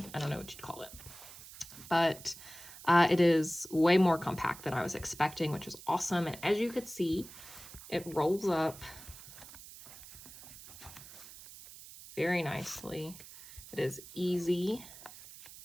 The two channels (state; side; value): noise; right; hiss, 16 dB below the sound